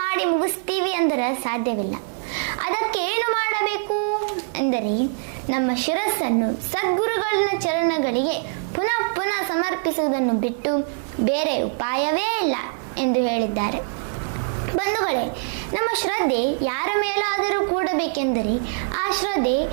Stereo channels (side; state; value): left; silent; digital silence